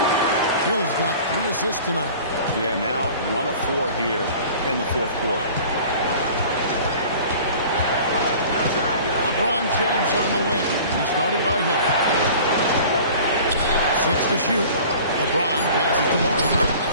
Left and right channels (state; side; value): inverted; both; correlation -0.44